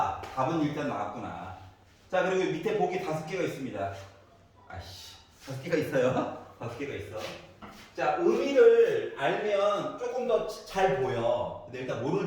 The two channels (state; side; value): identical; both; correlation 1.00